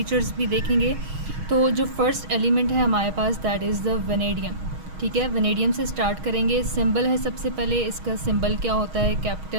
भी देखेंगे। तो जो फर्स्ट एलिमेंट है हमारे पास दैट इज़ द वेनेडियम। ठीक है, वेनेडियम से स्टार्ट करेंगे। सिंबल है सबसे पहले, इसका सिंबल क्या होता है,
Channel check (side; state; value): left; late; 6.3 ms